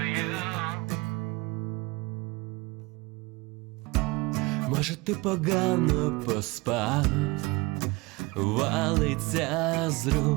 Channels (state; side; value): quieter; left; 23.6 dB